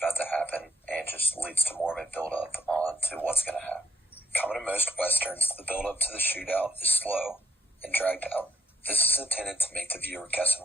to happen and just leads to more of a build-up on to what's going to happen. Common to most Westerns, the build-up to the shootout is slow and dragged out. This is intended to make the viewer guess on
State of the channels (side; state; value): both; normal; correlation 0.71